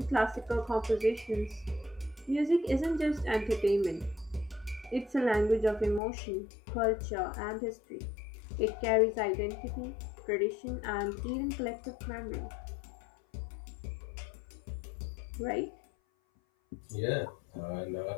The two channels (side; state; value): right; drops out; at 6.0 s